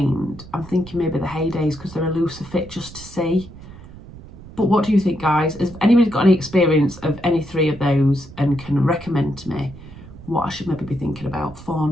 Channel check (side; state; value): right; noise; rumble, 17 dB below the sound